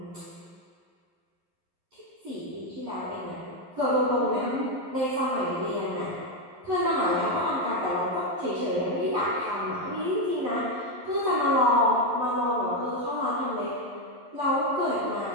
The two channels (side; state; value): left; late; 11 ms